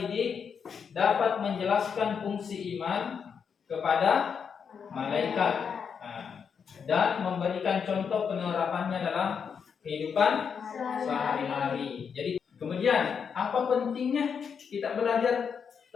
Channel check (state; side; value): quieter; right; 6.7 dB